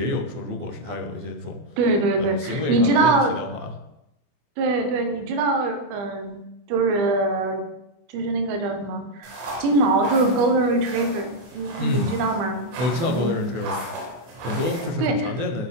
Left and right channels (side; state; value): left; late; 24 ms